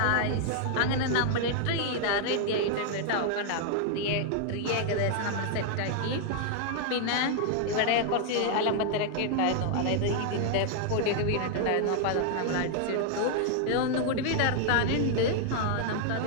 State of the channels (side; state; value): both; different; correlation 0.00